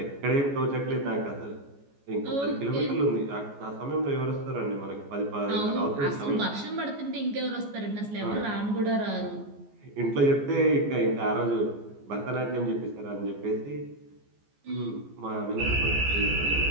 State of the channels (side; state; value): left; late; 14 ms